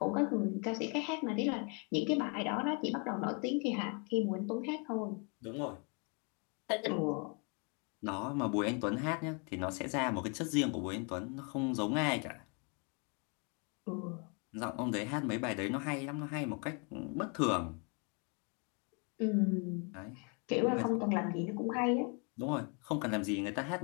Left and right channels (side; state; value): right; quieter; 35.3 dB